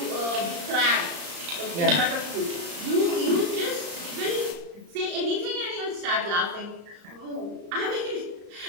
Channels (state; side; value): late; left; 35 ms